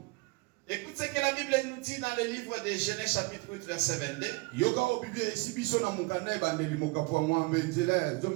Écoute ce que la Bible nous dit dans le livre de Genèse chapitre 8 verset 22.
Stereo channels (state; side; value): quieter; left; 26.5 dB